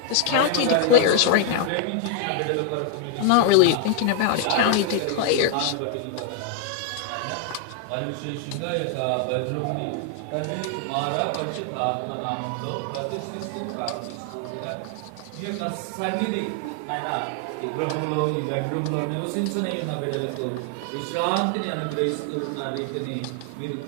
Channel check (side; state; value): both; different; correlation 0.00